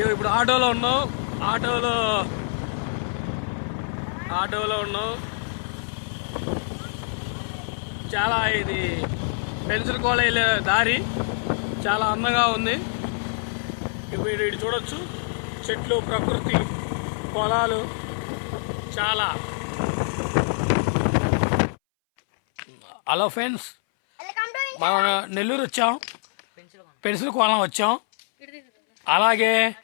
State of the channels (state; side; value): silent; right; 61 dB below the other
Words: ఇప్పుడు ఆటోలో ఉన్నాం. చాలా ఇది పెన్సిల్ కాలేజ్ దారి చాలా అందంగా ఉంది. ఇప్పుడు ఇటు చూడొచ్చు, చెట్లు, ప్రకృతి, పొలాలు చాలా. హలో ఫ్రెండ్స్, మనం నెల్లూరు వచ్చాం, పెన్సిల్ కోలం వచ్చాం. అలాగే